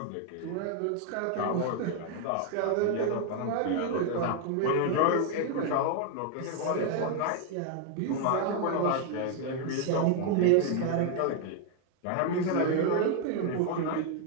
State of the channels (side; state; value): both; different; correlation 0.00